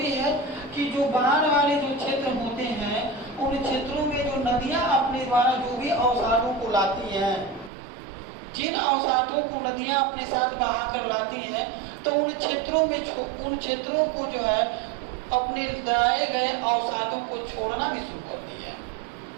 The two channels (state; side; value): drops out; left; at 7.7 s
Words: है कि जो बाढ़ वाले जो क्षेत्र होते हैं उन क्षेत्रों में जो नदियां अपने द्वारा जो भी अवसादों को लाती हैं, जिन अवसादों को नदियां अपने साथ बहा कर लाती हैं तो उन क्षेत्रों को जो है अपने लाए गए अवसादों को छोड़ना भी शुरू करती है।